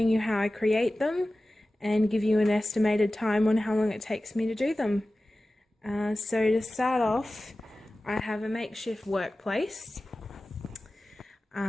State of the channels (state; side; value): normal; both; correlation 0.96